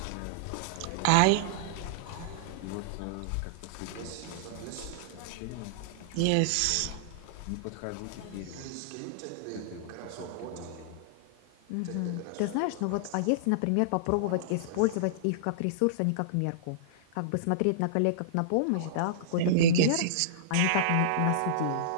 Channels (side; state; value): both; different; correlation -0.02